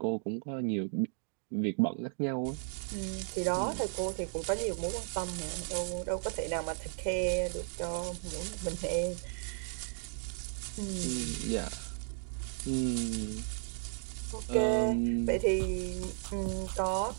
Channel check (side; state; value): left; silent; 55 dB below the other